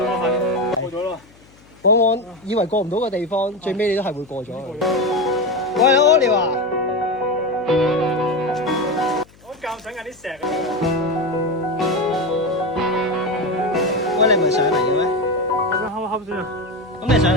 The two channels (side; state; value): left; noise; hum, 27 dB below the sound